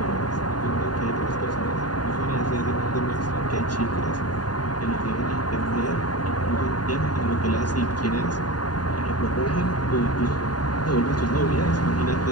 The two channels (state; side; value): late; right; 0.70 ms